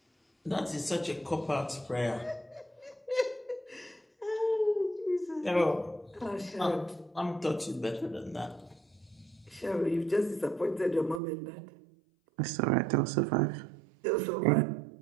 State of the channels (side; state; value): left; drops out; at 11.2 s